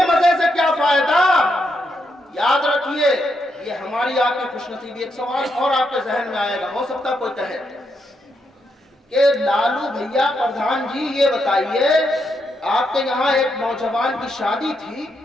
مزے سے کیا فائدہ؟ یاد رکھیے یہ ہماری آپ کی خوش نصیبی۔ ایک سوال اور آپ کے ذہن میں آئے گا، ہو سکتا کوئی کہے کہ لالو بھیا پردھان جی یہ بتائیے آپ کے یہاں ایک نوجوان کی شادی تھی،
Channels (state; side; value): normal; both; correlation 0.80